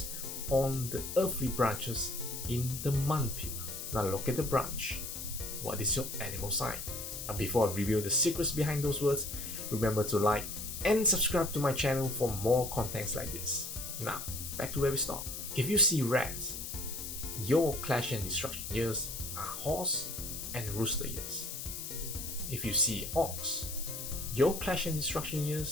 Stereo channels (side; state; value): left; noise; hiss, 7 dB below the sound